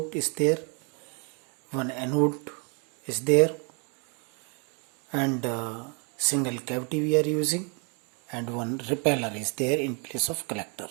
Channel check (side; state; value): left; quieter; 35.8 dB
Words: is there, one anode is there, and single cavity we are using, and one repeller is there in place of collector.